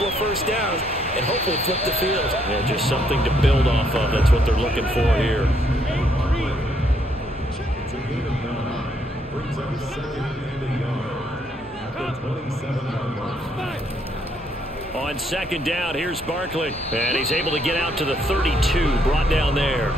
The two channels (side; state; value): both; normal; correlation 0.71